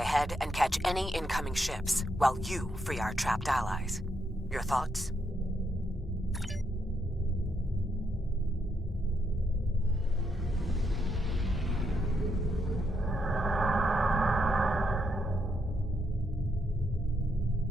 ahead and catch any incoming ships, while you free our trapped allies. Your thoughts?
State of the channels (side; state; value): both; normal; correlation 0.78